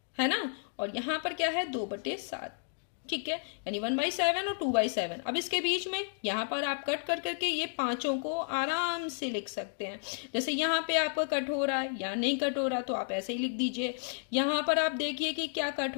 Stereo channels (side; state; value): right; silent; digital silence